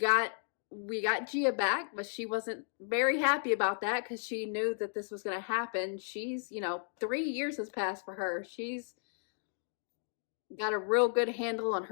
Gia back, but she wasn't very happy about that because she knew that this was going to happen. She's, 3 years has passed for her. She's got a real good handle on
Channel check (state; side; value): silent; right; 55 dB below the other